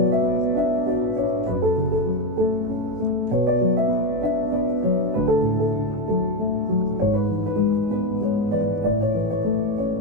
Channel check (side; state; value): left; late; 18 ms